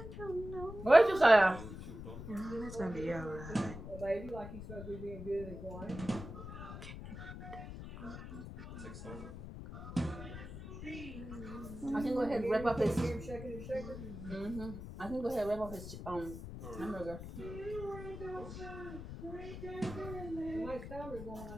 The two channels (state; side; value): noise; left; rumble, 10 dB below the sound